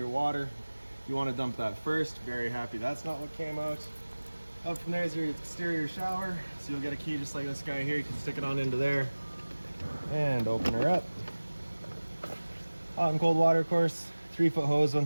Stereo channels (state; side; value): inverted; both; correlation -1.00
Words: water. You want to dump that first. Very happy that's not what came out. Up from there is your exterior shower. So you'll get a key just like this guy here. You can stick it on into there and open her up. Hot and cold water, of course. 3-foot hose